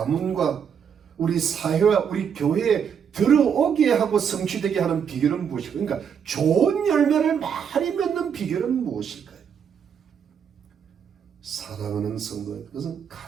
우리 사회와 우리 교회에 들어오게 하고 성취되게 하는 비결은 무엇일까요? 그러니까 좋은 열매를 많이 맺는 비결은 무엇일까요? 사랑하는 성도들, 그것은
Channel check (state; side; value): quieter; left; 7.5 dB